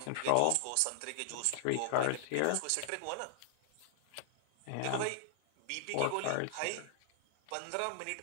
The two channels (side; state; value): both; different; correlation -0.01